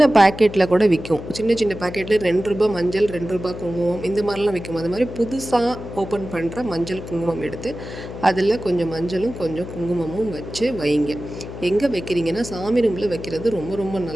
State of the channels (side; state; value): left; noise; hum, 11 dB below the sound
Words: பேக்கெட்டில் கூட விற்கும். சின்ன சின்ன பேக்கெட்டில் ₹2 மஞ்சள், ₹2 குங்குமம், இந்த மாதிரிலாம் விற்கும். அது மாதிரி புதுசாக ஓப்பன் பண்ணுற மஞ்சள் குங்குமம் எடுத்து அதில் கொஞ்சம் மஞ்சளும் கொஞ்சம் குங்குமமும் வச்சு வைங்க. எங்கே வைக்கிறீங்கன்னா, சாமி ரூமில் வைக்கிறது ரொம்ப ரொம்ப